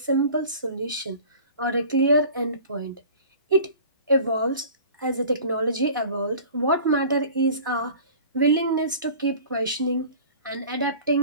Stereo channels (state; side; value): inverted; both; correlation -0.43